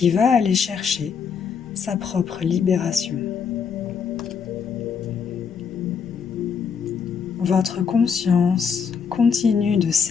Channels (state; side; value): quieter; right; 6.4 dB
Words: va aller chercher sa propre libération. Votre conscience continue de